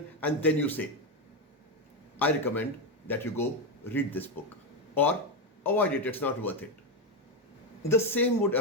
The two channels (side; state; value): both; normal; correlation 0.08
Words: and then you say, I recommend that you go read this book, or avoid it, it's not worth it. The same would